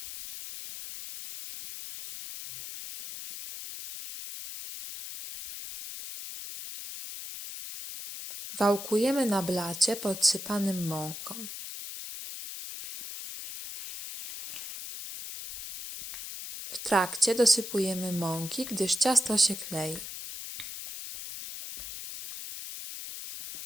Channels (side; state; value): left; noise; hiss, 9 dB below the sound